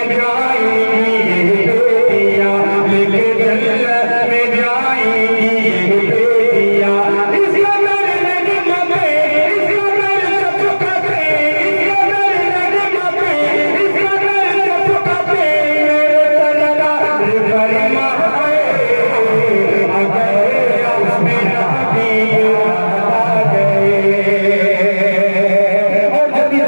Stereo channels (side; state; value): both; inverted; correlation -1.00